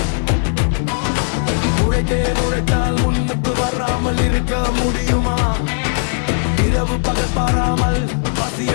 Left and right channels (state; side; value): silent; right; digital silence